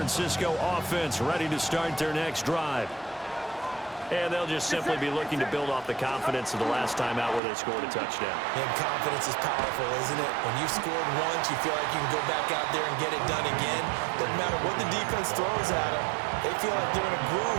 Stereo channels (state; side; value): drops out; left; at 7.4 s